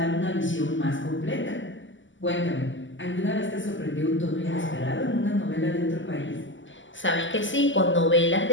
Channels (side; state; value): right; late; 0.55 ms